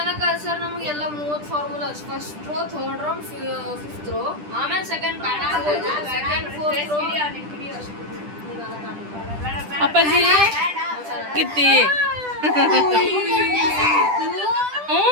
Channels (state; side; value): late; left; 10 ms